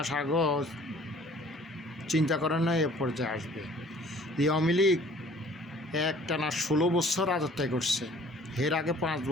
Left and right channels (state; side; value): normal; both; correlation 0.53